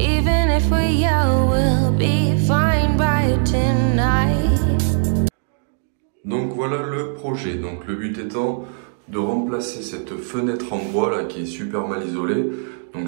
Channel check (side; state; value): left; silent; digital silence